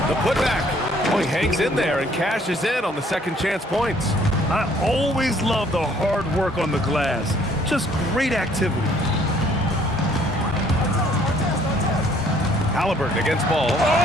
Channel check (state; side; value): normal; both; correlation 0.61